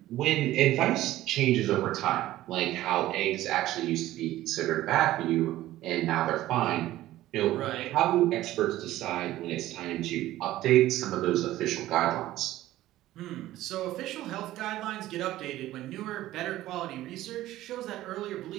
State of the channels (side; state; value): left; quieter; 15.1 dB